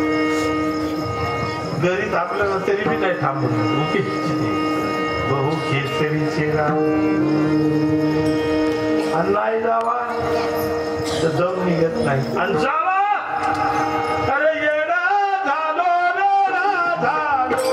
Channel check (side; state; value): both; identical; correlation 1.00